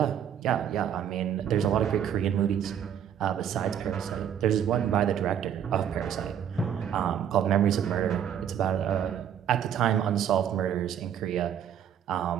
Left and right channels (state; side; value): quieter; left; 9.3 dB